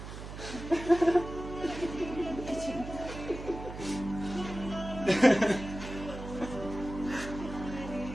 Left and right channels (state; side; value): noise; right; hum, 10 dB below the sound